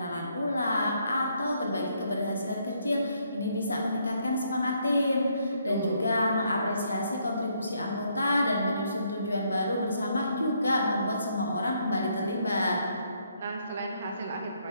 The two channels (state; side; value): inverted; both; correlation -0.72